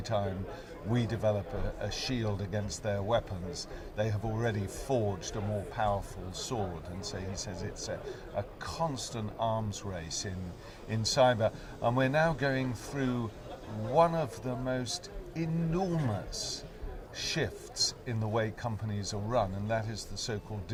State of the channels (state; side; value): identical; both; correlation 1.00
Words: we develop a shield against their weapons, they have already forged a more powerful sword. And so he says it's a constant arms race in cyber. And we're now going through one of the most enormous shifts in the way companies are run, and that is the so-called